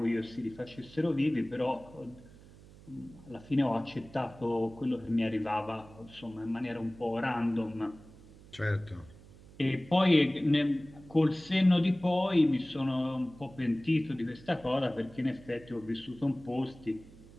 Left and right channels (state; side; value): noise; right; hum, 21 dB below the sound